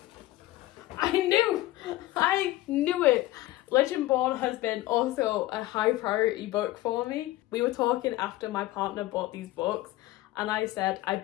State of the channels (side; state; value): right; quieter; 16.7 dB